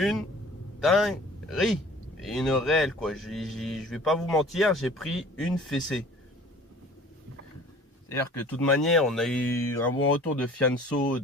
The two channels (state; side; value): normal; both; correlation 0.48